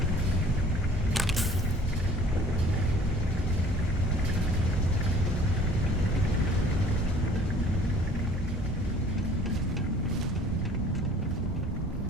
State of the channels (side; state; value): both; normal; correlation 0.51